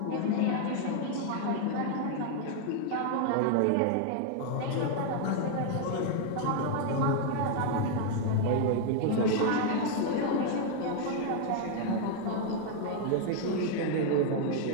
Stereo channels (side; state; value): both; different; correlation 0.00